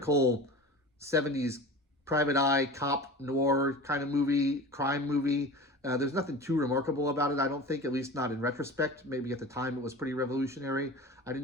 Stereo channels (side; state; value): both; normal; correlation 0.35